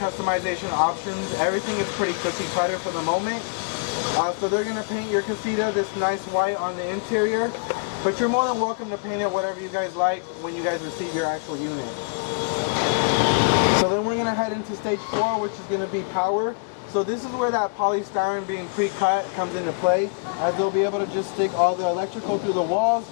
options. Everything is pretty cookie cutter for the moment. So they're gonna paint your casita this nice white on the interior, but you're more than welcome to paint it whatever you guys like when you guys receive your actual unit. So then we're gonna head into stage 4, which is gonna be power. So this is where that polystyrene being pre-cut comes into play, as they'll be able to just stick all the electrical through the walls,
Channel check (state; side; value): quieter; right; 37.0 dB